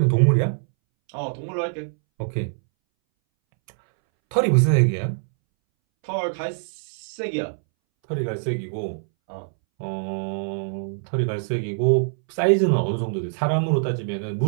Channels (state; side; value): silent; left; 62 dB below the other